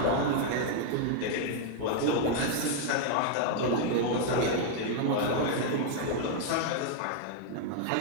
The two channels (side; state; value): both; different; correlation 0.00